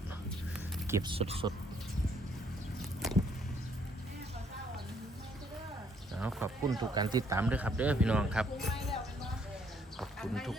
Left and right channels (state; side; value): normal; both; correlation 0.67